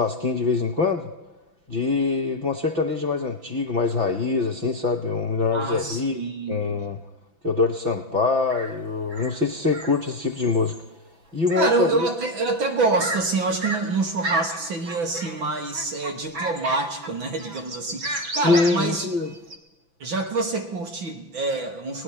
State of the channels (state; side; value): late; left; 6.0 ms